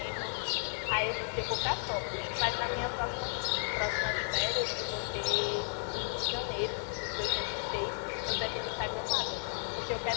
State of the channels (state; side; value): silent; right; 55 dB below the other